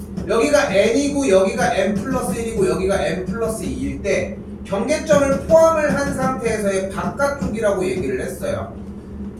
여기가 n이고 여기가 n 플러스 1이고 여기가 n 플러스 2일 때 경계점을 포함을 한 상태에서의 바깥쪽이라고 얘기를 했어요.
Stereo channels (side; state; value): both; identical; correlation 1.00